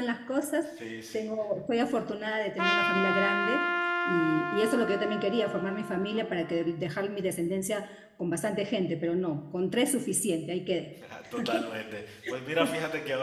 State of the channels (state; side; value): identical; both; correlation 1.00